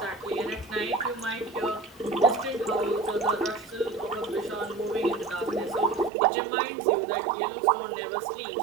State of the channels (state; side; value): drops out; left; at 6.1 s